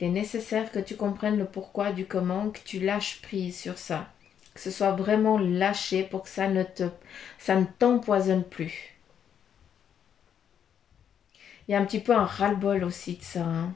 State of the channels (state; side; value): quieter; right; 8.6 dB